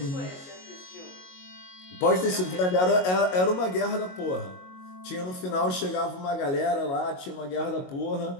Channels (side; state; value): right; late; 22 ms